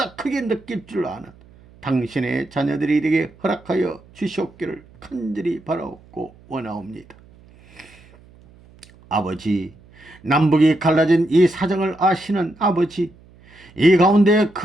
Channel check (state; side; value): noise; right; hum, 26 dB below the sound